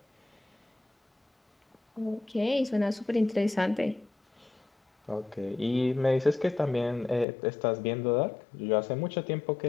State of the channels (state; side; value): drops out; right; at 7.2 s